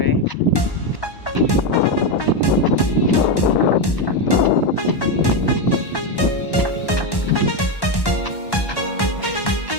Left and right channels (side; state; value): right; late; 1.1 ms